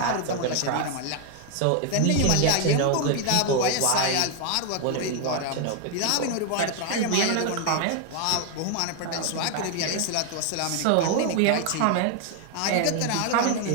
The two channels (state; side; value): different; both; correlation 0.01